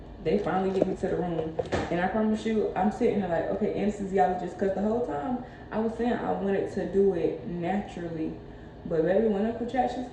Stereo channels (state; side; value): identical; both; correlation 1.00